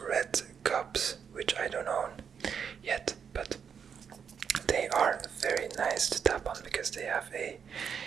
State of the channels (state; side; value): quieter; left; 7.1 dB